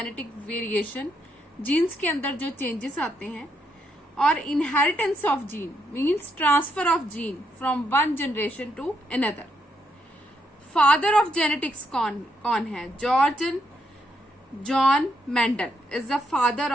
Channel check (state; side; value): normal; both; correlation 0.77